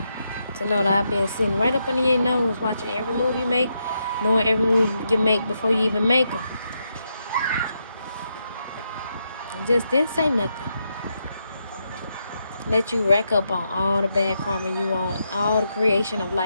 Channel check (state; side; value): inverted; both; correlation -0.82